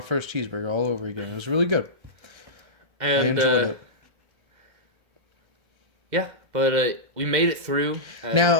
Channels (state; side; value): late; left; 2.1 ms